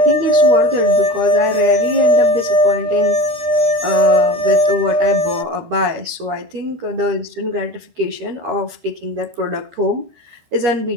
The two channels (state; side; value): late; left; 13 ms